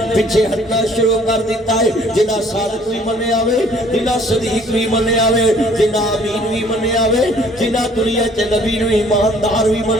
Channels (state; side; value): normal; both; correlation 0.57